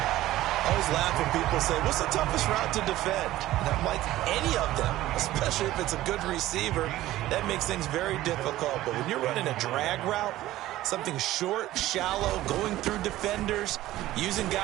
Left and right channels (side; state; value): left; quieter; 15.4 dB